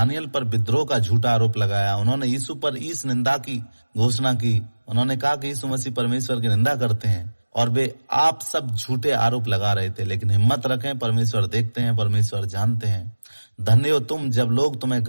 पर विद्रोह का झूठा आरोप लगाया, उन्होंने यीशु पर ईश निंदा की घोषणा की, उन्होंने कहा कि यीशु मसीह परमेश्वर की निंदा करते हैं, और वे आप सब झूठे आरोप लगा रहे थे। लेकिन हिम्मत रखें, परमेश्वर देखते हैं, परमेश्वर जानते हैं। धन्य हो तुम जब लोग तुम्हें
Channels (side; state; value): both; inverted; correlation -1.00